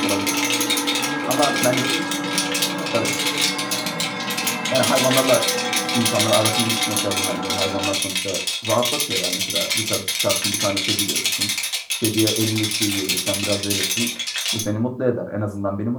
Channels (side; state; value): both; identical; correlation 1.00